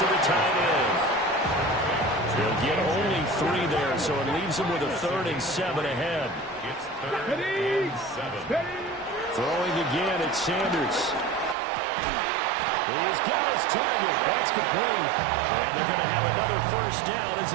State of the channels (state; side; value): drops out; left; at 11.6 s